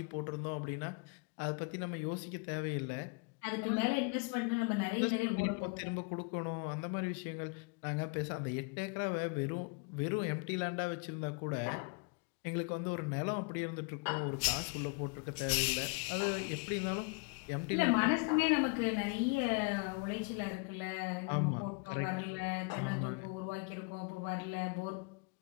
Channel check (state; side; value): quieter; right; 31.6 dB